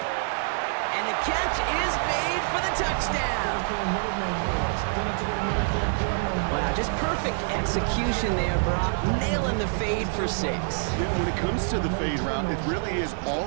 And the catch is made for the touchdown. Wow, just perfect execution there, Brock. Nailing the fade for 6. Yeah, when it comes to the fade route, it really is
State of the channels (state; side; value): silent; left; 58 dB below the other